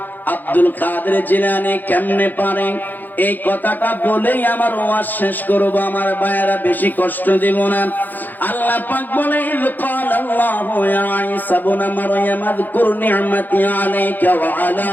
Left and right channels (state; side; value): late; right; 0.086 ms